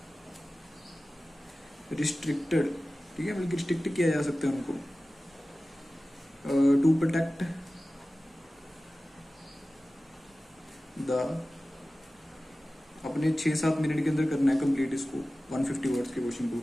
रिस्ट्रिक्टेड, ठीक है, बल्कि रिस्ट्रिक्ट किया जा सकता है उनको, टू प्रोटेक्ट द, अपने 6-7 मिनट के अंदर करना है कंप्लीट इसको, 150 वर्ड्स के क्वेश्चन को,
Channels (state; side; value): normal; both; correlation 0.96